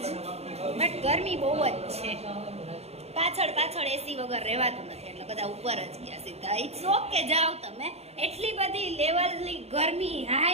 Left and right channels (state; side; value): late; left; 0.30 ms